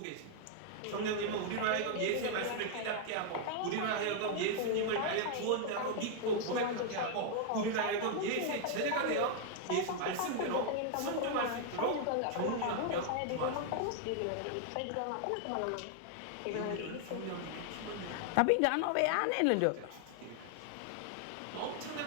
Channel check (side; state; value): both; different; correlation 0.00